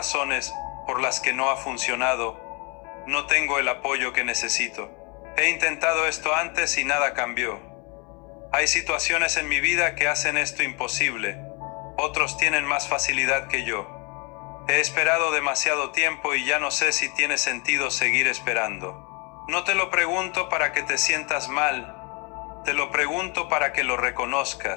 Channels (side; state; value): right; quieter; 31.2 dB